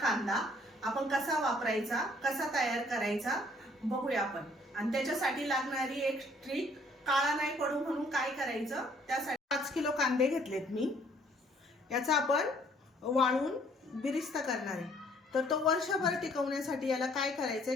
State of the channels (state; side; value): normal; both; correlation 0.62